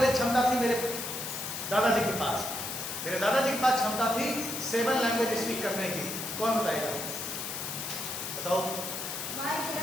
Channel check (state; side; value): noise; left; hiss, 5 dB below the sound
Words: क्षमता थी मेरे दादाजी के पास। मेरे दादाजी के पास क्षमता थी 7 लैंग्वेज स्पीक करने की। कौन बताएगा? बताओ। My